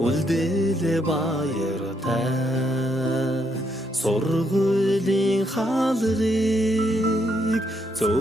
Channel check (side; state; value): both; normal; correlation 0.75